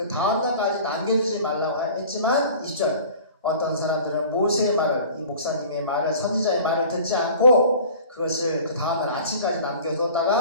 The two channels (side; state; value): both; inverted; correlation -0.44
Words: 다음날까지 남겨두지 말라고 했지만 20절 어떤 사람들은 모세의 말을 이 목사님의 말을 선지자의 말을 듣지 않고 그것을 그 다음날 아침까지